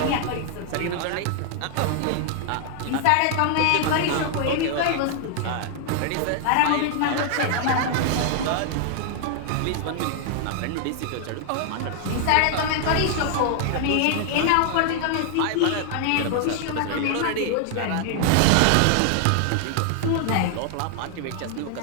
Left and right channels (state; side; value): different; both; correlation 0.00